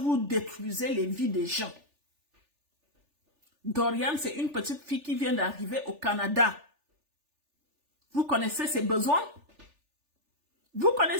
détruisez les vies des gens. Doriane, c'est une petite fille qui vient d'arriver au Canada. Vous connaissez ses besoins? Vous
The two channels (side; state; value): left; late; 3.4 ms